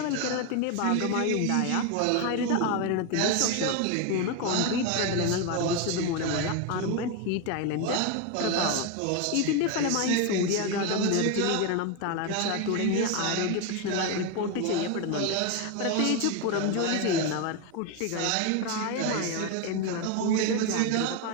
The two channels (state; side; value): different; both; correlation 0.02